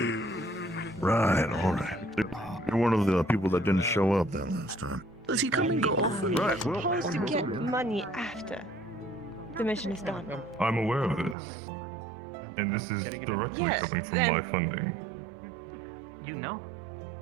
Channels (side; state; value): left; drops out; at 11.4 s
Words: Right, alright. You're one of the people that didn't show up that last time. Does he come and go? Right, well... Supposed to get money after the mission is done. I'm aware of this, and this is directly Yes, coming from then- my funding. You know?